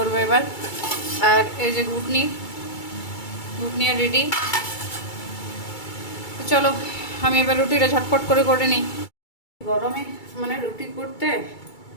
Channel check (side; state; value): right; late; 2.3 ms